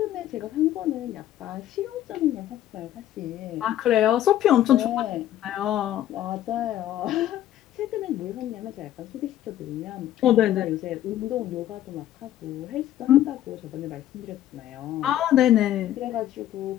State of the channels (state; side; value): quieter; right; 12.5 dB